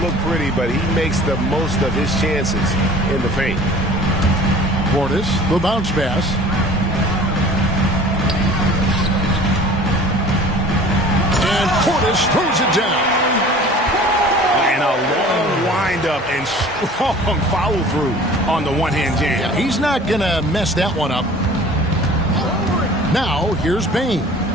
pretty, but he makes the most of his chances in the paint. Portis, the bounce pass. And Portis throws it down. And a long wind-up and strong follow-through on the one-hand jam. Yeah, he's not going to mess that one up. Now, here's Bane.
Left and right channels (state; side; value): normal; both; correlation 0.45